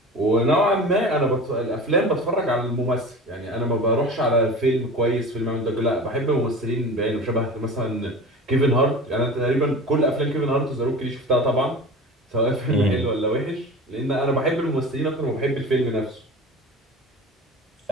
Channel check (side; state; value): both; normal; correlation 0.35